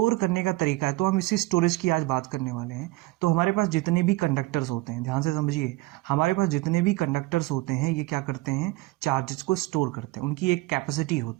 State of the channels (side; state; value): left; quieter; 20.2 dB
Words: करने का तरीका है, तो हम इसी स्टोरेज की आज बात करने वाले हैं. तो हमारे पास जितने भी कंडक्टर्स होते हैं, ध्यान से समझिए, हमारे पास जितने भी कंडक्टर्स होते हैं ये क्या करते हैं, चार्जेस को स्टोर करते हैं. उनकी एक कैपेसिटी